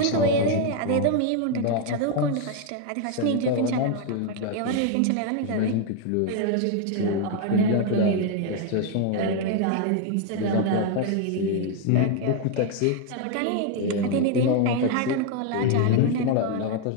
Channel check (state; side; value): different; both; correlation 0.01